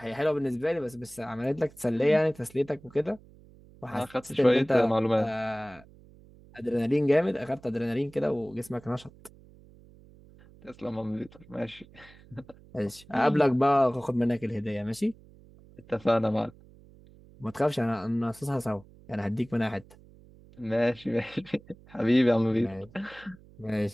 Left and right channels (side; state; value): right; noise; hum, 24 dB below the sound